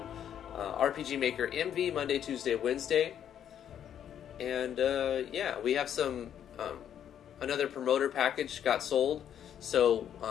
RPG Maker MV Monday, Tuesday, Wednesday. And yeah, we have some another promoter package got sold. So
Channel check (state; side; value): quieter; right; 9.6 dB